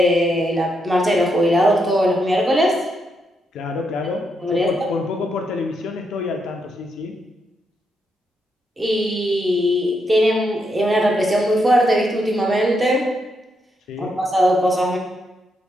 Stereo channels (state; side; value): normal; both; correlation 0.80